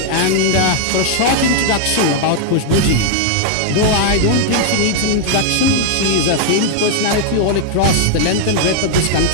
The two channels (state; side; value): different; both; correlation 0.00